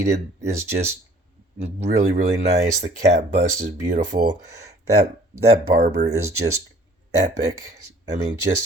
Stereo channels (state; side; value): normal; both; correlation 0.54